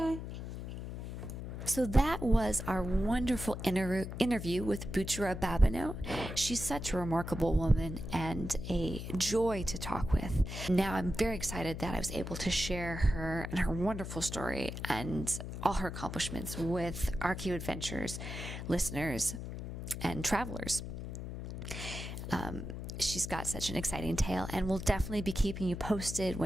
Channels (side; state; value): left; noise; hum, 7 dB below the sound